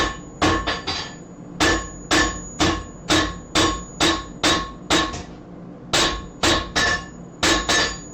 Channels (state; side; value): identical; both; correlation 1.00